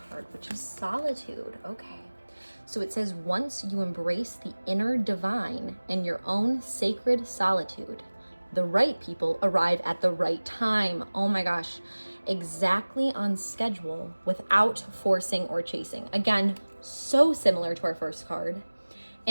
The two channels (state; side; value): inverted; both; correlation -1.00